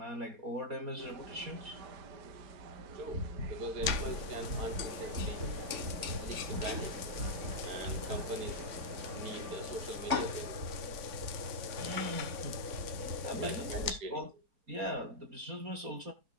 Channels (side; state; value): left; late; 3.6 ms